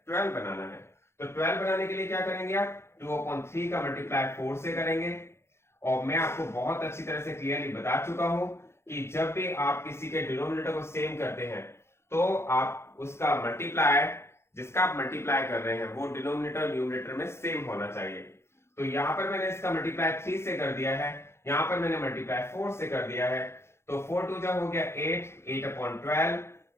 12 बनाना है। तो 12 बनाने के लिए क्या करेंगे आप? 2/3 का मल्टीप्लाई 4 से करेंगे। और मैं आपको बहुत अच्छी तरह से क्लियरली बता चुका हूं कि जब भी आप किसी के डिनोमिनेटर को सेम करते हैं तो आप उसका मल्टीप्लाई, जिसका आप मल्टीप्लाई कर रहे हैं वो डिनोमिनेटर न्यूमरेटर में सेम होना चाहिए। तो यहां पर मैंने इसका मल्टीप्लाई 3 से कर दिया है, यहां पर मैंने मल्टीप्लाई 4 से कर दिया है। तो 4 2 जा हो गया 8, 8/12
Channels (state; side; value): late; right; 0.12 ms